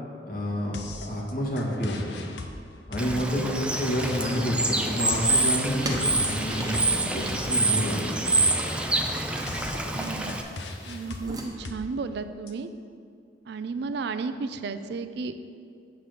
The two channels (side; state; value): both; normal; correlation 0.12